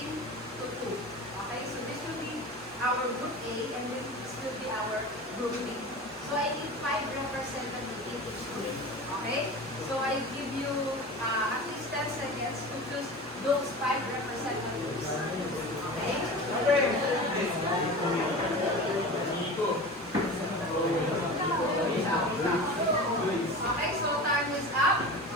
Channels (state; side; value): normal; both; correlation 0.32